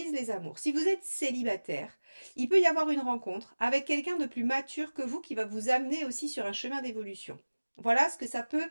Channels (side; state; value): both; inverted; correlation -1.00